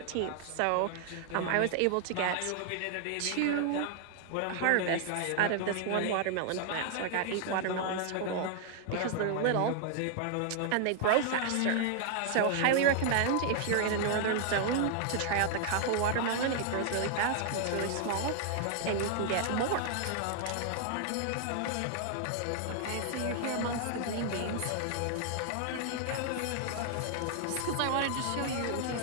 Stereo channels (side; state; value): both; different; correlation 0.00